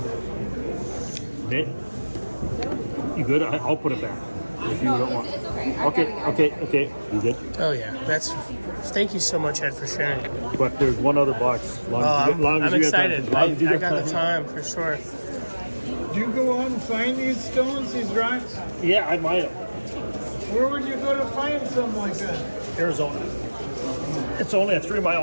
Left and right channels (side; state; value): both; inverted; correlation -1.00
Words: Okay. You good? I'll put it back. If you don't want. It's okay. Okay. You good? Oh yeah. That's. Thank you so much, Ed, for sharing. But there's one other box. Long as you I'm get excited. time. Long as you I get got the time. time for sure. Do you go out and find these stones, these rocks? Yeah, I might have. Where would you go to find something like that? Arizona. It's only a